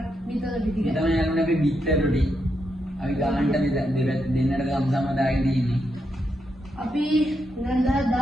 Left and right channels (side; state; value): both; normal; correlation 0.82